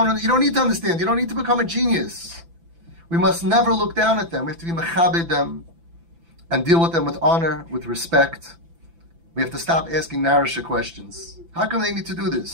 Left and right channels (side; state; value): left; late; 5.9 ms